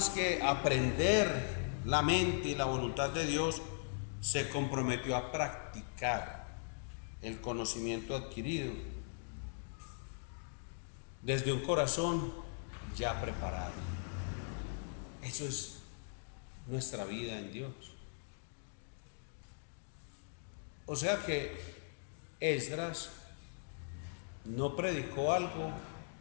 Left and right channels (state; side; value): silent; right; digital silence